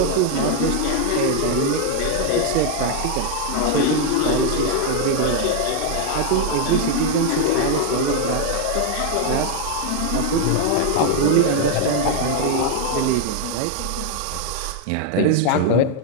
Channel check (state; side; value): different; both; correlation 0.00